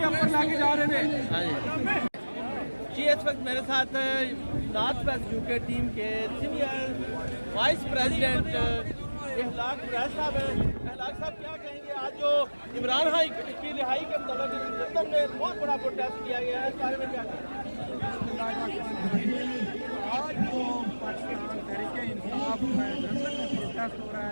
ऊपर लाके जा रहे थे। हाँ जी, इस वक्त मेरे साथ नॉर्थ वेस्ट यूके टीम के सीनियर वाइस प्रेसिडेंट इखलाक कुरैश साहब हैं। इखलाक साहब क्या कहेंगे, आज जो इमरान खान की रिहाई के मतलब लंदन में बहुत बड़ा प्रोटेस्ट किया गया है, इस बारे में क्या कहेंगे? आज जो पाकिस्तान तहरीक इंसाफ में लंदन में प्रोटेस्ट हो रहा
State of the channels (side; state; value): both; inverted; correlation -1.00